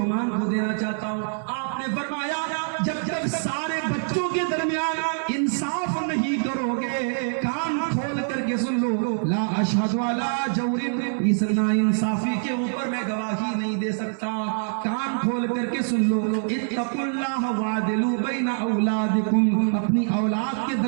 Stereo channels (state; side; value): silent; left; 62 dB below the other